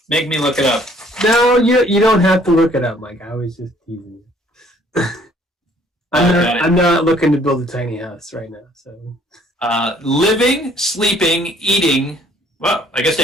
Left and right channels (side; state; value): both; normal; correlation 0.60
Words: make me look it up. No, you don't have to look it up, Mike. I was just teasing you. I'm not looking to build a tiny house right now. So, living, sleeping, eating. Well, I guess